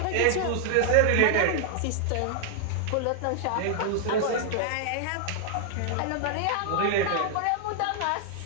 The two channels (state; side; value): different; both; correlation -0.01